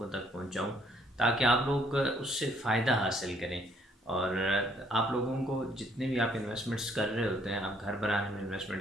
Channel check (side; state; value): both; normal; correlation 0.65